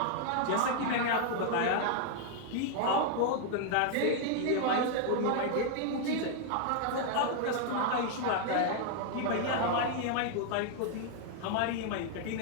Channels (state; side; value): different; both; correlation 0.00